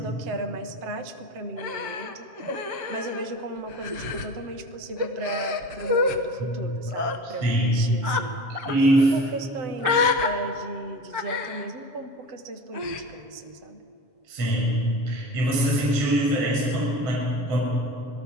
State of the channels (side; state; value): left; late; 7.3 ms